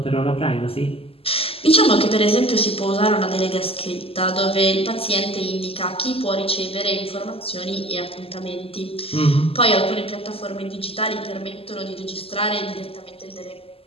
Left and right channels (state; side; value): late; right; 0.28 ms